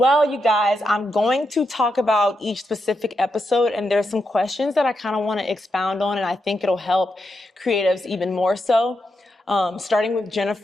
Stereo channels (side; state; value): both; normal; correlation 0.84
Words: you guys, I'm going to talk about each specific episode, and there's some questions that I kind of want to expound on, and I think it'll help creatives even more so. Starting with